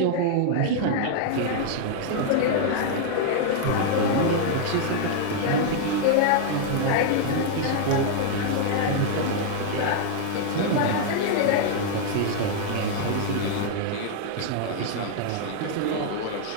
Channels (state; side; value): different; both; correlation -0.01